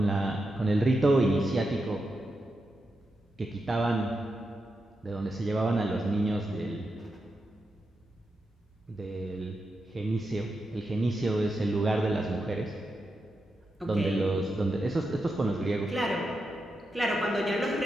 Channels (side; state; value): both; normal; correlation 0.87